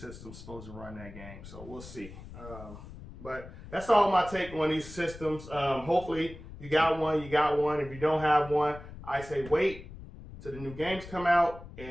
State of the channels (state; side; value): noise; left; rumble, 15 dB below the sound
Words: supposed to run that game, so we'll see. But that's all my take on these systems. Hopefully you got one. If you don't have one, I say wait till the new games come out